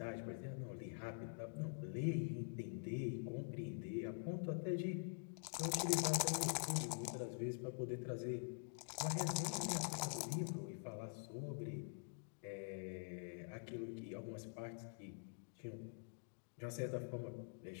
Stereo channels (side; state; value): right; silent; digital silence